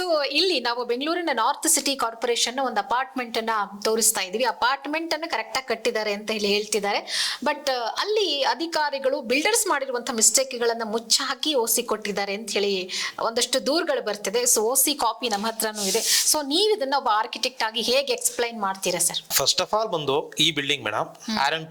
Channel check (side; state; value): both; identical; correlation 1.00